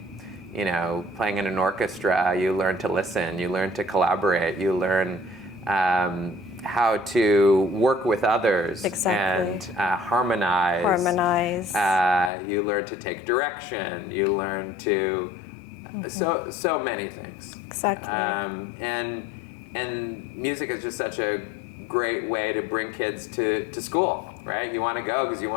Playing in an orchestra, you learn to listen, you learn to collaborate, you learn how to work with others. Exactly. And harmonize. You learn to take direction. You learn to so many things. Exactly. And music is just such a great way to bring kids to school, right? You want to go because you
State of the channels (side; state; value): right; drops out; at 12.3 s